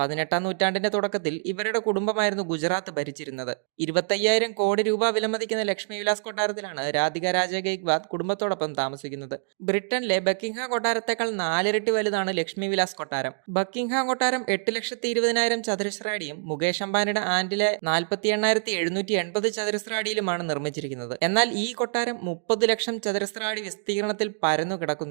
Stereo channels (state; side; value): silent; left; digital silence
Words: 18-ാം നൂറ്റാണ്ടിന്റെ തുടക്കത്തിൽ ഇവരുടെ കുടുംബമായിരുന്നു ഗുജറാത്ത് ഭരിച്ചിരുന്നത്. 25,000 കോടി രൂപ വിലമതിക്കുന്ന ലക്ഷ്മി വിലാസ് കൊട്ടാരത്തിലാണ് രാധിക രാജെ ഗെയ്ക്വാദ് കുടുംബത്തോടൊപ്പം താമസിക്കുന്നത്. ബ്രിട്ടനിലെ ബക്കിംഗ്ഹാം കൊട്ടാരത്തേക്കാൾ 4 ഇരട്ടി വലുതാണ് ലക്ഷ്മി വിലാസ് കൊട്ടാരം. ബക്കിംഗ്ഹാം കൊട്ടാരം 8,20,000 ചതുരശ്ര അടിയും മുകേഷ് അംബാനിയുടെ ആന്റിലെ 48,780 ചതുരശ്ര അടിയിലുമാണ് നിർമ്മിച്ചിരിക്കുന്നത്. എന്നാൽ ഈ കൊട്ടാരം 30 ലക്ഷം ചതുരശ്ര അടി വിസ്തീർണത്തിൽ പരന്നു